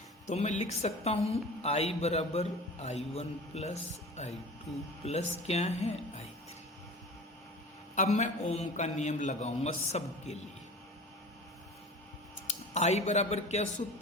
तो मैं लिख सकता हूँ I बराबर I1 प्लस I2 प्लस क्या है I3। अब मैं ओम का नियम लगाऊंगा सबके लिए। I बराबर क्या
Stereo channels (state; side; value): normal; both; correlation 0.37